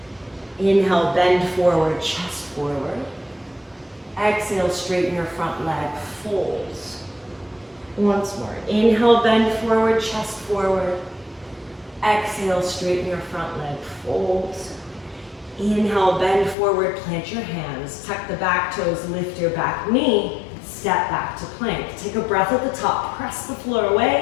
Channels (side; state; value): right; drops out; at 16.6 s